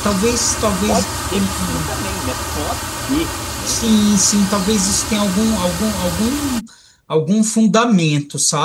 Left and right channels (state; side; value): identical; both; correlation 1.00